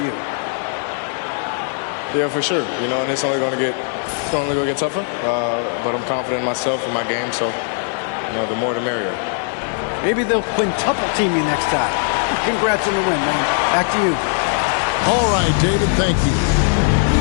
you. Yeah, for sure. And it's only going to get tougher. But I'm confident in myself and my game, so the more the merrier. Maybe they'll quintuple team you next time. Congrats on the win, man. Back to you. All right, David, thank you.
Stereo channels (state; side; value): silent; right; 64 dB below the other